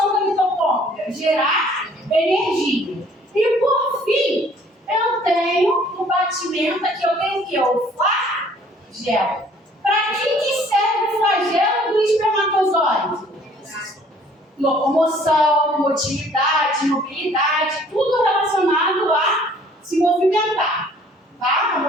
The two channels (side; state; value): both; normal; correlation 0.57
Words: da mitocôndria? Gerar energia. E por fim, eu tenho no batimento aqui, eu tenho o quê? O flagelo. Para que serve o flagelo do espermatozoide? Locomoção, motilidade, mobilidade, tudo relacionado a se movimentar, tá? A